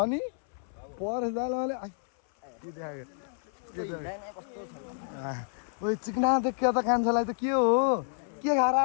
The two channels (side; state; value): right; silent; 58 dB below the other